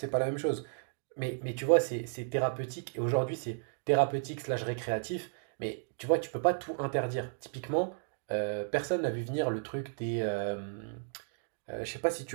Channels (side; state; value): left; silent; digital silence